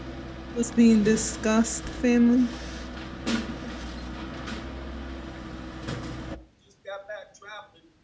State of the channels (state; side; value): identical; both; correlation 1.00